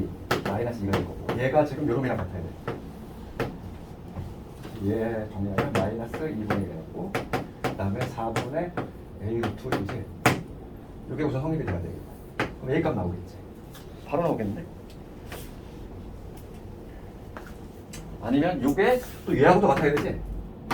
마이너스 2가 될 거고 얘가 지금 요놈이랑 같아야 돼. 얘 정리하면 마이너스 2분의 1이 되고 그 다음에 4분의 a 루트 2지. 이게 우선 성립이 돼야 되겠다. 그럼 a 값 나오겠지. 바로 나오겠네. 아니면 이게 또 얘하고 또 같아야 되지.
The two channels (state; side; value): identical; both; correlation 1.00